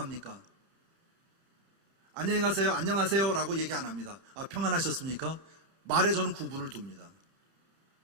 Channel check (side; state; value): left; late; 30 ms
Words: 안녕히 가세요, 안녕하세요 라고 얘기 안 합니다. 평안하셨습니까? 말에 저는 구분을 둡니다.